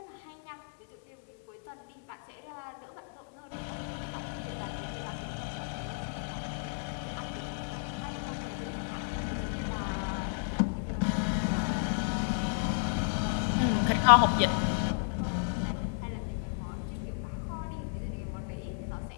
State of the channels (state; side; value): silent; right; digital silence